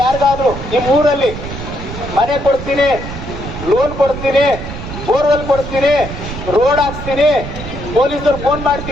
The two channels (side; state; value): right; noise; rumble, 9 dB below the sound